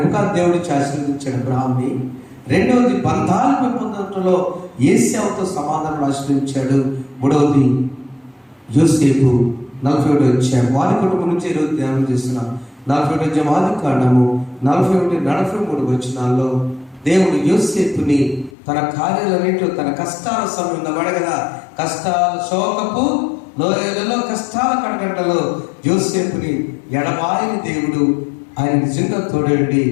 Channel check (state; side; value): drops out; right; at 18.5 s